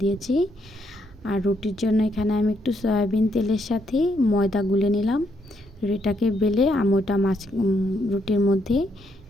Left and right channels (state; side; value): normal; both; correlation 0.75